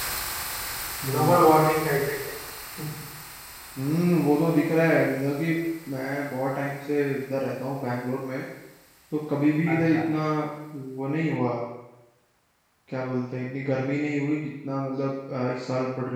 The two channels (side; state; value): both; identical; correlation 1.00